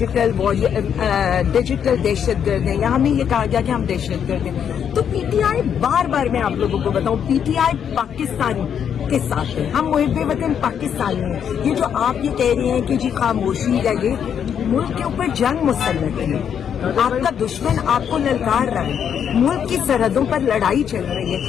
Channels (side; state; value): right; quieter; 8.3 dB